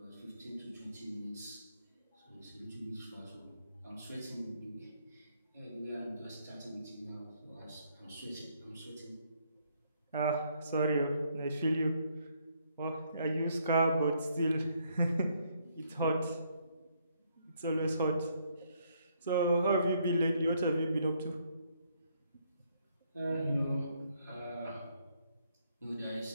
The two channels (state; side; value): inverted; both; correlation -0.70